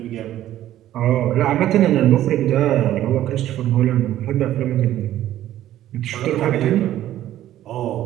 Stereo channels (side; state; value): left; quieter; 13.0 dB